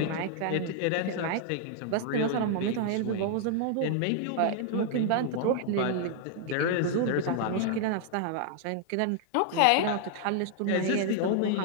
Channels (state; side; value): different; both; correlation 0.00